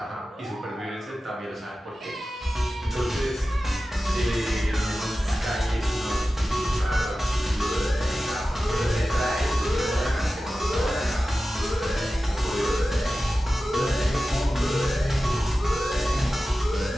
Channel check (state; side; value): normal; both; correlation 0.94